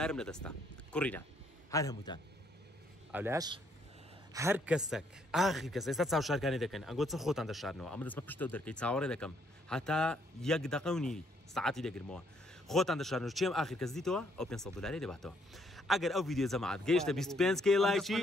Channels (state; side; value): normal; both; correlation 0.70